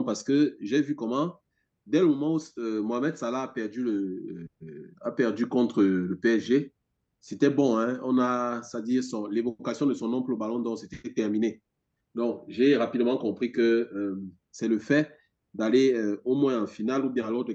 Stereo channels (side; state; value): both; identical; correlation 1.00